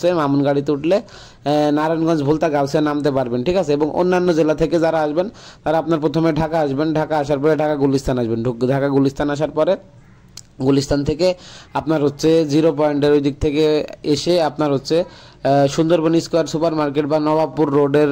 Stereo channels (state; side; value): identical; both; correlation 1.00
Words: মামুন গাড়িতে উঠলে নারায়ণগঞ্জ ভোলতা গাউসিয়া নামতে পারবেন। ঠিক আছে, এবং অন্যান্য জেলা থেকে যারা আসবেন তারা আপনার প্রথমে ঢাকা আসবেন, ঢাকা আসার পরে ঢাকা গুলিস্তান আসবেন, ঢাকা গুলিস্তান আসার পরে গুলিস্তান থেকে আপনার জিরো পয়েন্টের ওই দিক থেকে এসে আপনার সুন্দরবন স্কোয়ার সুপার মার্কেট বা নবাবপুর রোডের